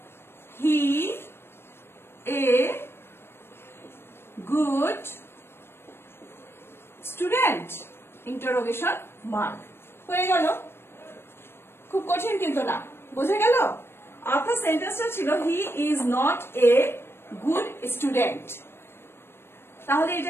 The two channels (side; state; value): right; late; 0.12 ms